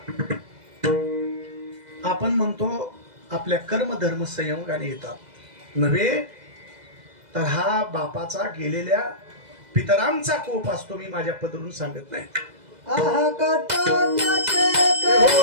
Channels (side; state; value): left; late; 2.0 ms